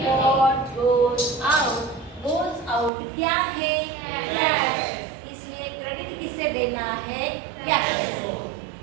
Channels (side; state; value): left; drops out; at 2.9 s